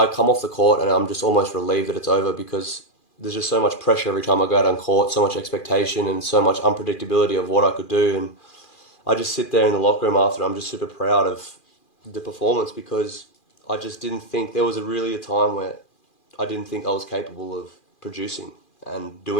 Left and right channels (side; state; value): right; late; 2.4 ms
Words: come off the court and I'm just almost relieved that it's over, because there's just so much pressure every time I go out on court, so much expectation and so much unpredictability of what I could do. And I just sit there in the locker room after, I'm just super proud of the performance, because I just didn't think there was really a time where I didn't think I was capable of producing and